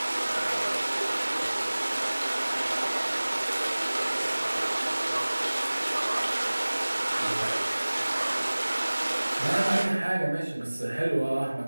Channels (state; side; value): inverted; both; correlation -1.00